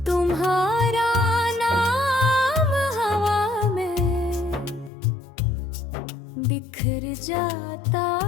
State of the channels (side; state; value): right; drops out; at 4.9 s